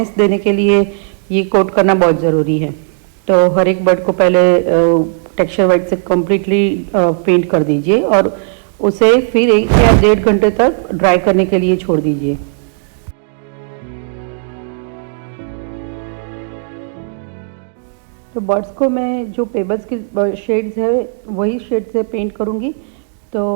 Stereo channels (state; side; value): silent; left; digital silence